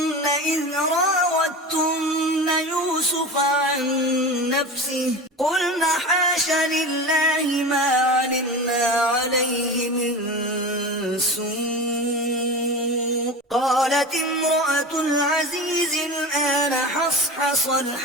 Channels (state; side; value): normal; both; correlation 0.30